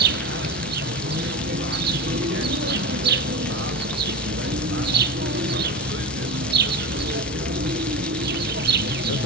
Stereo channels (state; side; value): normal; both; correlation 0.24